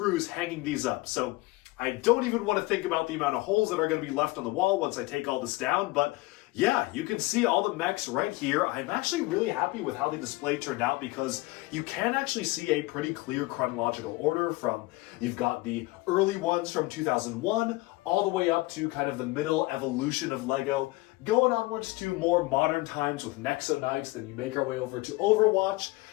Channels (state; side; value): quieter; right; 21.1 dB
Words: hanging these up. So I don't even want to think about the amount of holes that are going to be left on the wall once I take all this down, but yeah, you can see all the mechs right here. I'm actually really happy with how the display turned out because you can actually see a pretty clear chronological order from, you've got the early ones from 2001 all the way up to kind of the middle evolution of LEGO, going onwards to more modern times with Nexo Knights, then you make our way over to Overwatch,